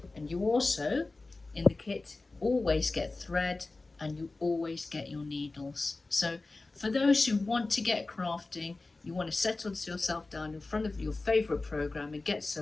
And you also, in the kit, always get thread, and you always get your needles. So for those who want to get crafting, you want to settle yourself down in front of your favorite program and get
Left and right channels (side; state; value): right; quieter; 3.4 dB